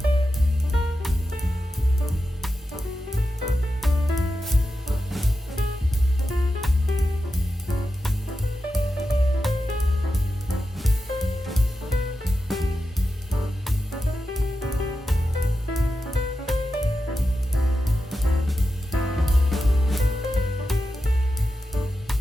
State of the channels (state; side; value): normal; both; correlation 0.90